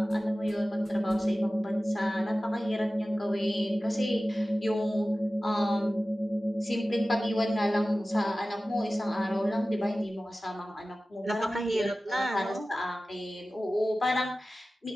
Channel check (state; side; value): normal; both; correlation 0.96